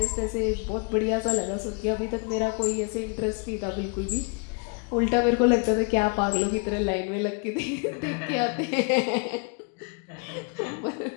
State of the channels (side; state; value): right; quieter; 35.5 dB